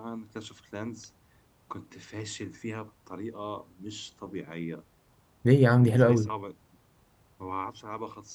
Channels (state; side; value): identical; both; correlation 1.00